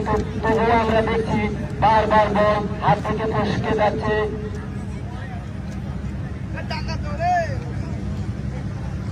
তবুও আমরা দেখছি বারবার বল হাত থেকে ফসকে যাচ্ছে।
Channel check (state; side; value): identical; both; correlation 1.00